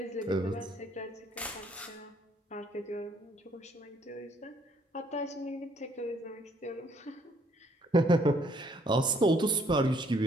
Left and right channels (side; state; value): both; normal; correlation 0.65